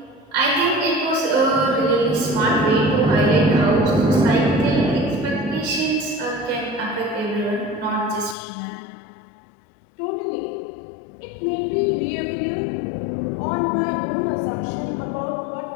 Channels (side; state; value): right; drops out; at 8.3 s